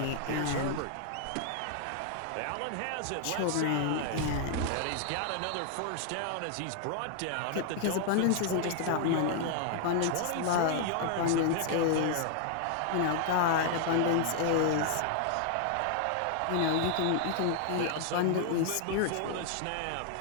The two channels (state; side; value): different; both; correlation 0.00